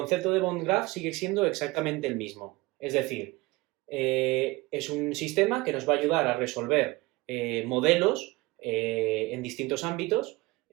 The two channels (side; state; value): left; quieter; 21.8 dB